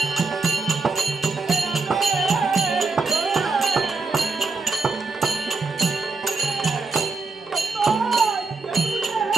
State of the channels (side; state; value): left; quieter; 4.0 dB